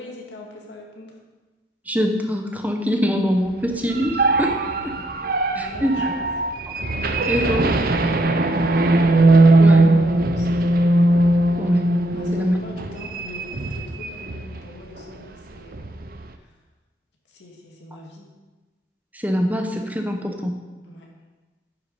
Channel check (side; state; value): both; normal; correlation 0.74